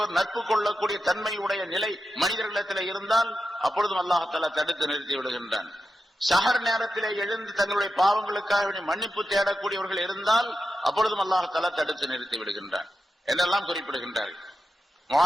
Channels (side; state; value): both; normal; correlation 0.89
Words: நட்பு கொள்ளக்கூடிய தன்மையுடைய நிலை மனிதர்களிடத்தில் இருந்தால் அப்பொழுதும் அல்லாஹால தடுத்து நிறுத்தி விடுகின்றான். சஹர் நேரத்திலே எழுந்து தங்களுடைய பாவங்களுக்காக வேண்டி மன்னிப்பு தேடக்கூடியவர்கள் இருந்தால் அப்பொழுதும் அல்லாஹால தடுத்து நிறுத்தி விடுகின்றான் என்றெல்லாம் குறிப்பிடுகின்றார்கள்.